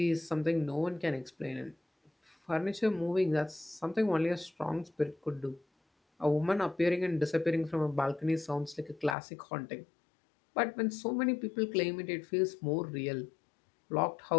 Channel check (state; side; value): drops out; right; at 9.2 s